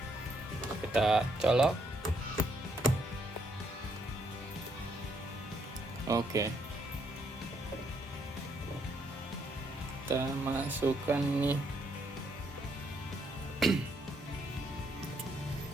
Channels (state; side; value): normal; both; correlation 0.73